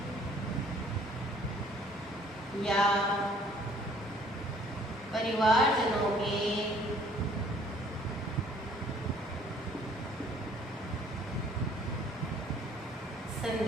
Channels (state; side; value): normal; both; correlation 0.58